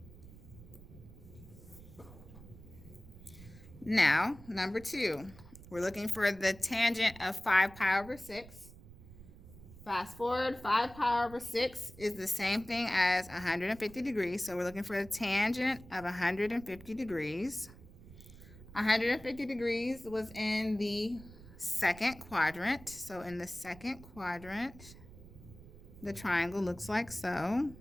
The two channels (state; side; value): noise; right; rumble, 18 dB below the sound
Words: Now, number 2, we're looking for the tangent of 5 pi over 6. Fast forward, 5 pi over 6 is the same thing as 150 degrees. So we're looking for the tangent of 150 degrees. 150 degrees was in the second quadrant. So in the second quadrant, the triangle looks like so.